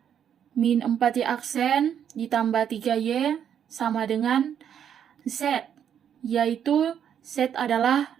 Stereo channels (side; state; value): left; quieter; 8.9 dB